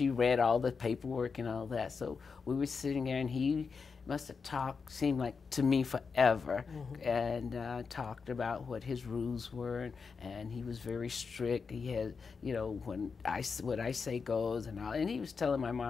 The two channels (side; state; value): right; quieter; 5.2 dB